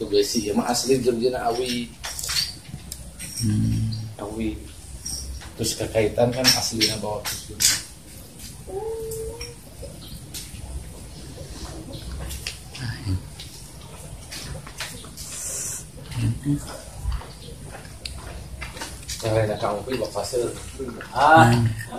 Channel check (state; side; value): identical; both; correlation 1.00